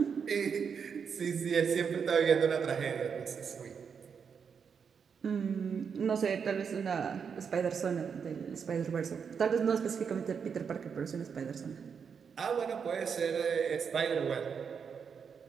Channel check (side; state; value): left; quieter; 6.5 dB